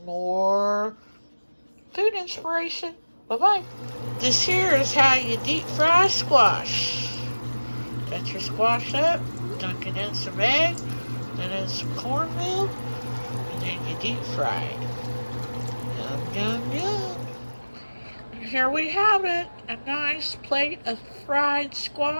more food inspiration. Bye-bye. This here is how you deep fry squash. Got your squash up, dunk it in some egg, then in some cornmeal, and then you deep fry it. Yum, yum, yum. And here we have it, a nice plate of fried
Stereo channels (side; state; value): both; inverted; correlation -1.00